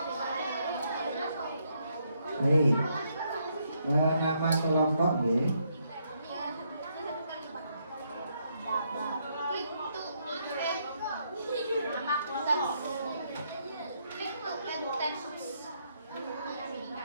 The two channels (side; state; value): both; inverted; correlation -0.75